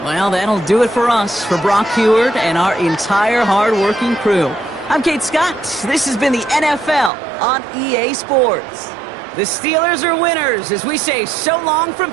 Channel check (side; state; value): left; drops out; at 7.1 s